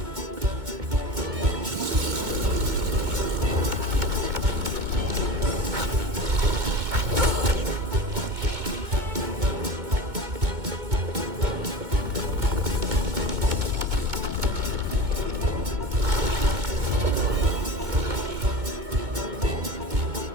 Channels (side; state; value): left; late; 2.2 ms